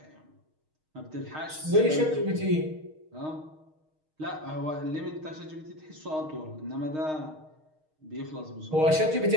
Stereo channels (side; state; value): left; late; 6.5 ms